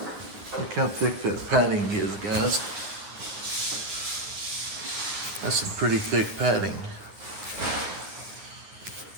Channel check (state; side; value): late; left; 9.8 ms